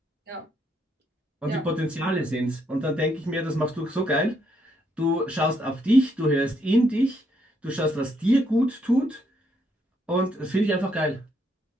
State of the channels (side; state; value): both; normal; correlation 0.74